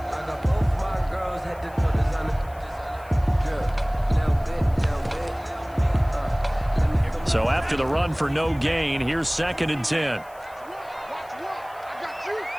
So after the run for no gain, here's 2nd and 10.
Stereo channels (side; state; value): left; noise; hiss, 26 dB below the sound